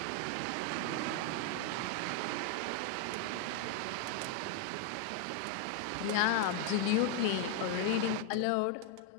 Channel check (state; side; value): different; both; correlation 0.00